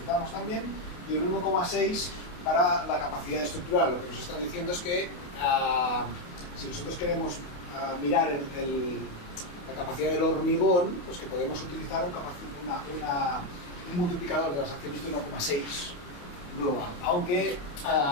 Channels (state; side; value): late; right; 28 ms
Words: también. Y el 1,6 para la capacidad estructural. Lo que nos está diciendo es que si nosotros queremos mirar la capacidad del hormigón, pues que podemos utilizar un multiplicador de las acciones de 1,6 global. Aunque